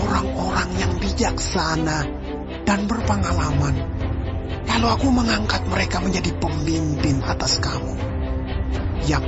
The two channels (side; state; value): both; identical; correlation 1.00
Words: yang bijaksana dan berpengalaman. Lalu aku mengangkat mereka menjadi pemimpin atas kamu,